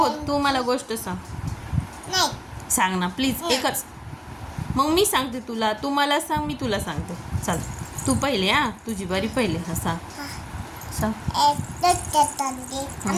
तू मला गोष्ट सांग. नाही. सांग ना प्लीज. एकच. मग मी सांगते तुला. तू मला सांग. मी तुला सांगते. चाल. तू पहिले. तुझी बारी पहिले. हा सांग. सांग.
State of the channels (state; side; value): identical; both; correlation 1.00